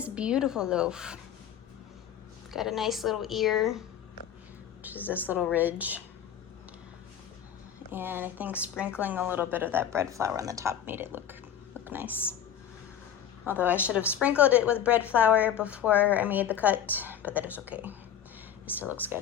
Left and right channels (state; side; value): quieter; right; 9.3 dB